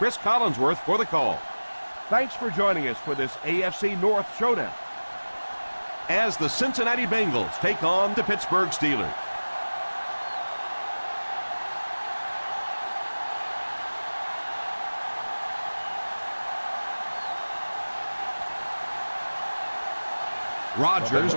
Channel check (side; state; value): both; inverted; correlation -1.00